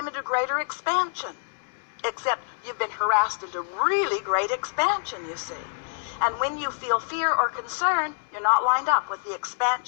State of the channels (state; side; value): silent; right; digital silence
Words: into greater expansion. Except you've been harassed into really great expansion, you see. And when you feel fear or concern, you're not lined up with the